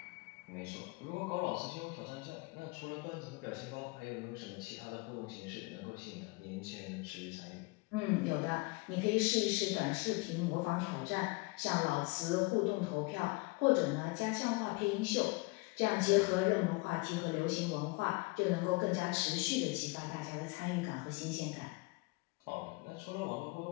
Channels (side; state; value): right; quieter; 26.1 dB